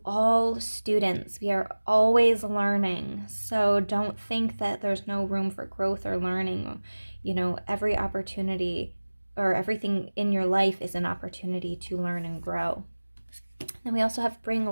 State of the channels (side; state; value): both; inverted; correlation -1.00